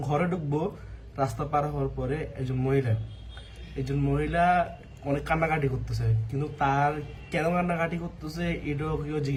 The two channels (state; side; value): identical; both; correlation 1.00